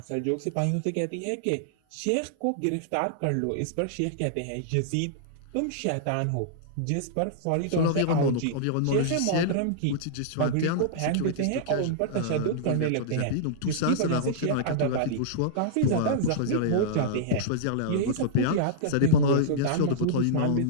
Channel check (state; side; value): different; both; correlation -0.02